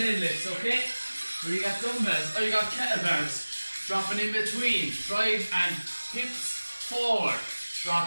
okay? Where you got dumbbells, or you got kettlebells. Dropping in between, drive and hips forward.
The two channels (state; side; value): inverted; both; correlation -1.00